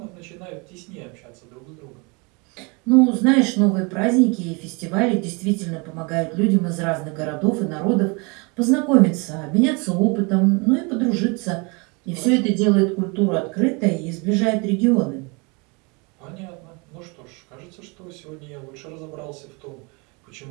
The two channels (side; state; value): left; quieter; 29.9 dB